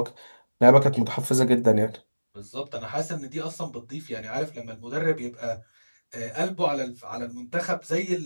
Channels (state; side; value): inverted; both; correlation -1.00